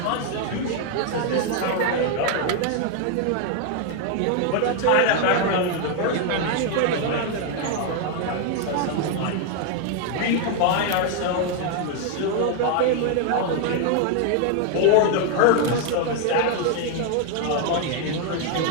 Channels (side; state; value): both; different; correlation 0.00